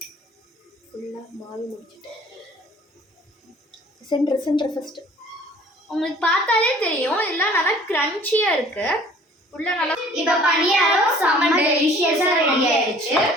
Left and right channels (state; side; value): normal; both; correlation 0.52